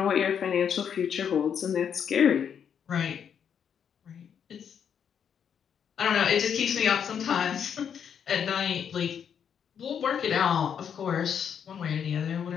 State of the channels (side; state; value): right; quieter; 7.9 dB